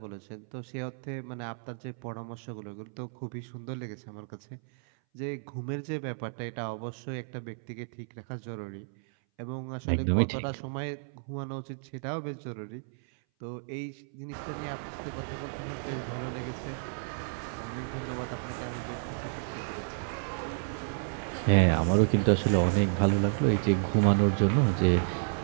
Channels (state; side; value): silent; left; 57 dB below the other